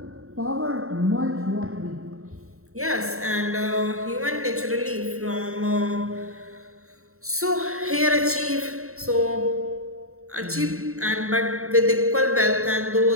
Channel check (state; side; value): late; left; 0.64 ms